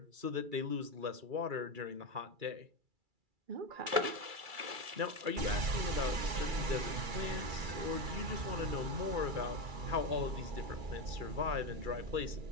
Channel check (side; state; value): left; late; 2.3 ms